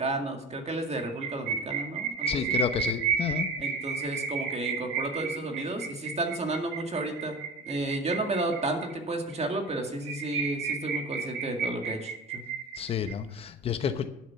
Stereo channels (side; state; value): both; normal; correlation 0.33